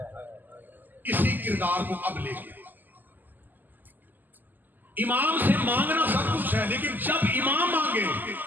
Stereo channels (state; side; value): late; left; 0.087 ms